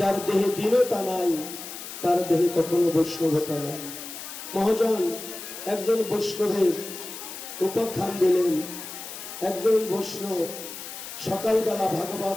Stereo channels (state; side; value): noise; left; hiss, 10 dB below the sound